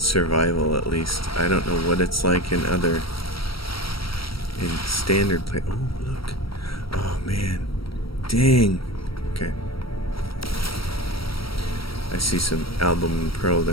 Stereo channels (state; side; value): late; right; 0.75 ms